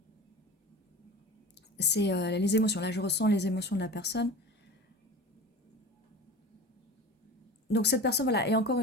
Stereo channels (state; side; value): normal; both; correlation 0.34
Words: C'est les émotions. Là, je ressens les émotions de la personne. Donc cette personne, voilà, et encore